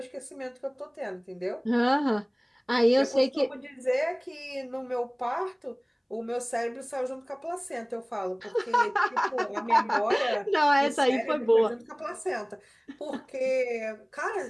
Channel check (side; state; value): both; identical; correlation 1.00